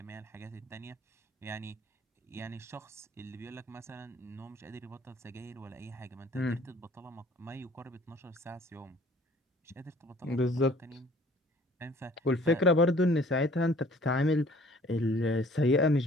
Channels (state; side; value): normal; both; correlation 0.54